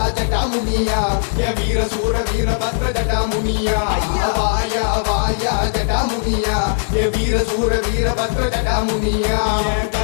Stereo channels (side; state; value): right; silent; digital silence